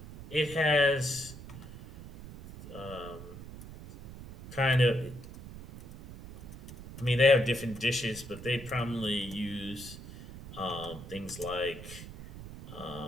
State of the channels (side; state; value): right; noise; rumble, 14 dB below the sound